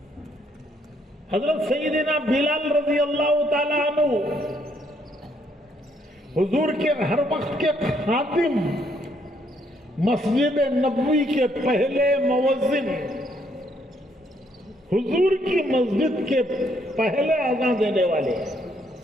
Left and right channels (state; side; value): normal; both; correlation 0.70